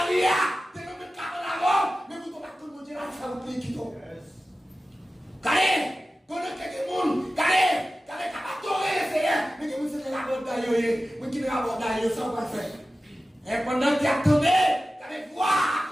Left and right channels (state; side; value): normal; both; correlation 0.95